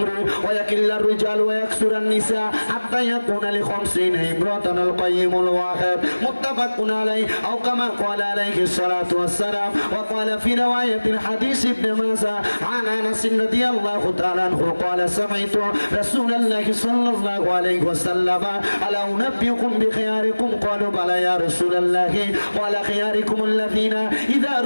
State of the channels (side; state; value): both; inverted; correlation -1.00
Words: ويقل الرجال ويكثر النساء حتى يكون ل50 امرأة القيم الواحد متفق عليه او كما قال عليه الصلاه والسلام. وقال في روايه الحديث ابن ماجه عن انس رضي الله تعالى عنه قال سمعت رسول الله صلى الله عليه وسلم الا انبئكم بخياركم قالوا بلى يا رسول الله قال خياركم الذين اذا